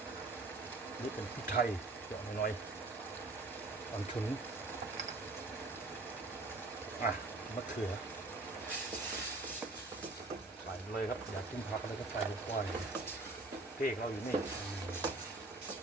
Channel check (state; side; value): quieter; left; 3.2 dB